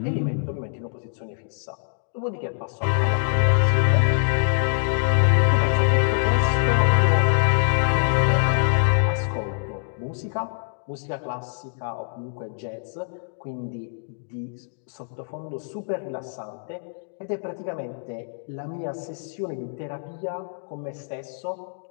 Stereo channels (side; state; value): right; silent; 62 dB below the other